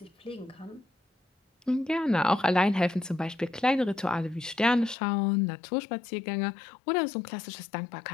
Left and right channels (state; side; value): drops out; right; at 5.0 s